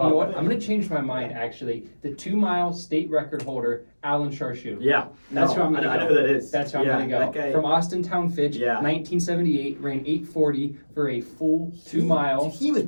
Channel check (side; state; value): both; inverted; correlation -1.00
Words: know what? I'm gonna change my mind. Actually, the 2-mile state record holder, Alan Charshu. Yeah. That's who I'm I gonna know go. who that is. That's where yeah, I'm gonna go. That guy, From Austin Town Fitch, Yeah. 1978, ran 8:40 for a full 2 mile. He was